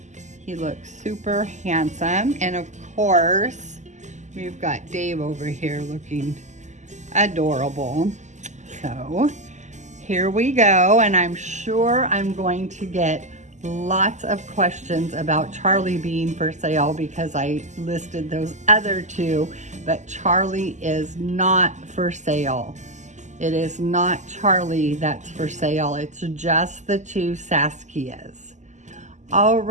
He looks super handsome. And of course, we've got Dave over here looking adorable. So here we go. And I'm sure I'm going to get lots of questions about Charlie being for sale because I listed those other two, but Charlie is not for sale. It is not Charlie that's for sale. It's just the two Saskias. All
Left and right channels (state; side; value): late; left; 0.34 ms